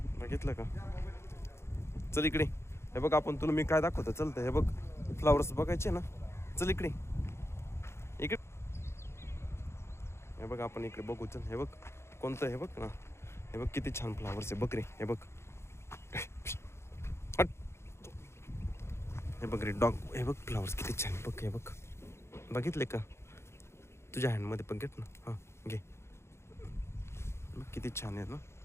बघितलं का? चल इकडे. हे बघ आपण तुला मी काय दाखवतो चलतं. हे बघ फ्लावर्स बघायचे ना. चल इकडे इकडे. हे बघ आपण इकडे बघू. चल हे बघ कोणतं. हे बघ ना. हे बघ किती छान फ्लावर्स आहे बघ रे. हे बघ. हे बघ रे डॉग. हे बघ फ्लावर्स किती छान बघ. हे बघ बघितले का? तुझ्या हँडमध्ये पण घेत ना. हां घे. किती छान आहेत ना.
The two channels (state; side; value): late; right; 0.13 ms